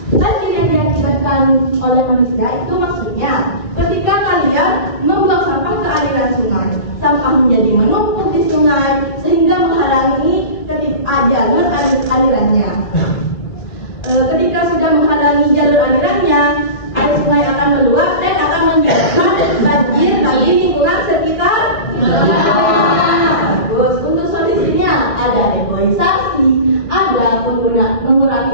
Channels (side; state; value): right; late; 2.1 ms